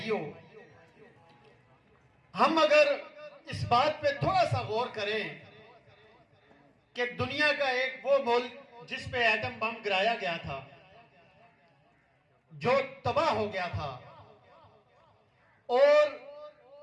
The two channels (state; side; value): identical; both; correlation 1.00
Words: हम अगर इस बात पे थोड़ा सा गौर करें कि दुनिया का एक वो मुल्क जिस पे एटम बम गिराया गया था, जो तबाह हो गया था, और